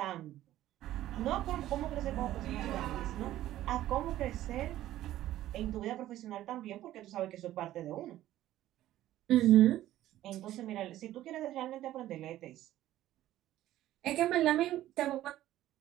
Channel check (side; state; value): left; quieter; 13.9 dB